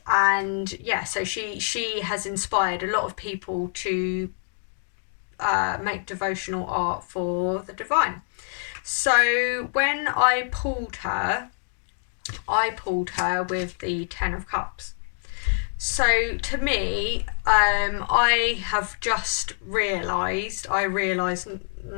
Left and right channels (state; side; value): silent; right; digital silence